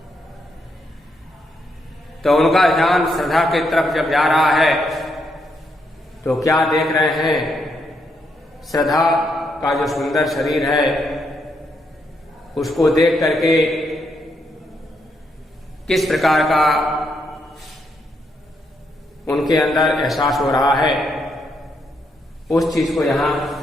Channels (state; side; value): normal; both; correlation 0.78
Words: तो उनका ध्यान श्रद्धा की तरफ जब जा रहा है तो क्या देख रहे हैं? श्रद्धा का जो सुंदर शरीर है उसको देख करके किस प्रकार का उनके अंदर एहसास हो रहा है, उस चीज को यहां